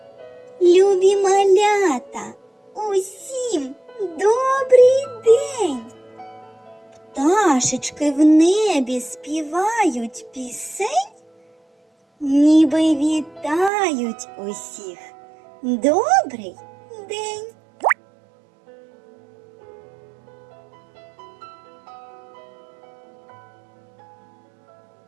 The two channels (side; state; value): left; drops out; at 13.7 s